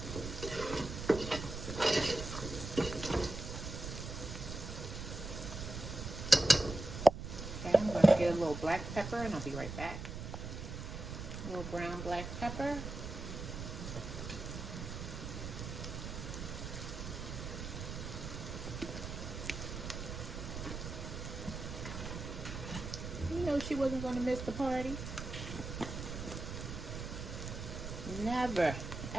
Okay, I'm going to get a little black pepper and I'll be right back. A little brown black pepper. You know she wasn't going to miss the party. Never,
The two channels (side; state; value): right; noise; rumble, 7 dB below the sound